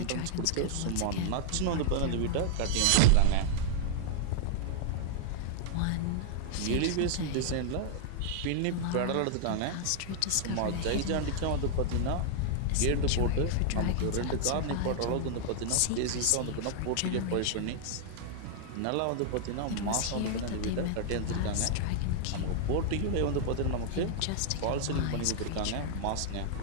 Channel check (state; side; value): different; both; correlation 0.00